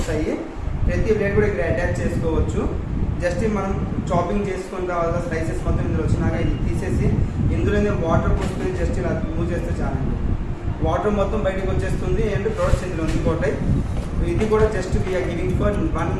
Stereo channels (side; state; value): both; identical; correlation 1.00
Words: ప్రతి ప్లేట్ కూడా ఇక్కడ అటాచ్ చేసుకోవచ్చు. జస్ట్ మనం చాపింగ్ చేసుకున్న తర్వాత స్లైసెస్ మొత్తం ఇందులో వచ్చినాక ఇది తీసేసి ఇందులోనే వాటర్ పోసుకొని జస్ట్ ఇలా మూవ్ చేస్తే చాలండి. వాటర్ మొత్తం బయటకు వచ్చేస్తుంది. అండ్ ప్రోడక్ట్స్ ఇందులో ఉండిపోతాయి. ఇది కూడా just we are giving for